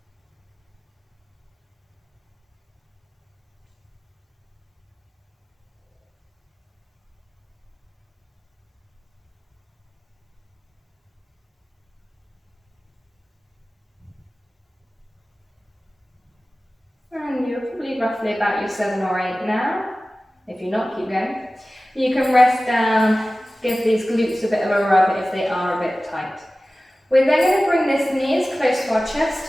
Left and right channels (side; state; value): both; normal; correlation 0.97